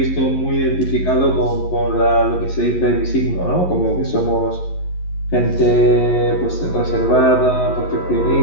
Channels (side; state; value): right; late; 11 ms